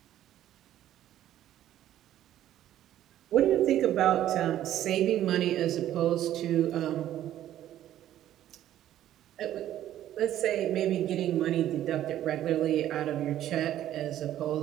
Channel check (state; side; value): quieter; left; 12.3 dB